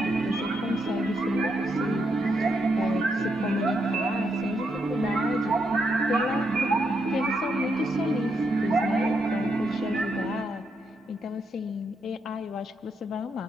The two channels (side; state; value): both; normal; correlation 0.80